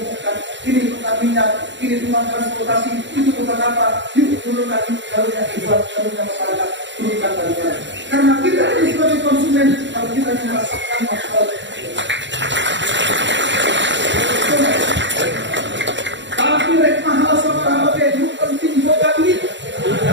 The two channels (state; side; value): late; left; 0.53 ms